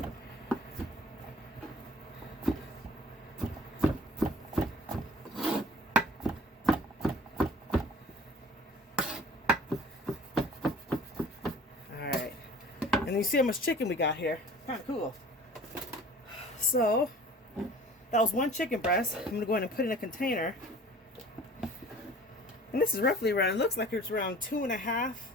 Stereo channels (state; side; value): normal; both; correlation 0.47